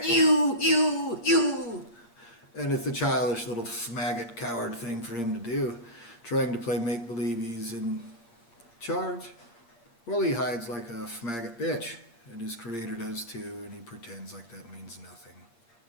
You. and it's a childish little faggot coward thing for him to do, trying to play make-believe he's in charge. Well, he hides like a faggot bitch, and his creator does too, and he pretends like that means nothing,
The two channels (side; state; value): right; late; 8.6 ms